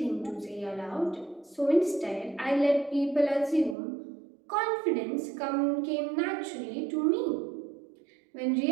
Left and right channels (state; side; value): drops out; left; at 3.8 s